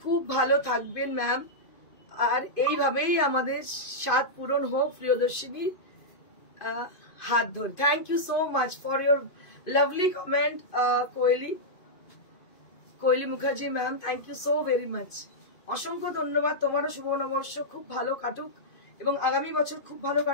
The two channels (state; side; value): late; right; 2.5 ms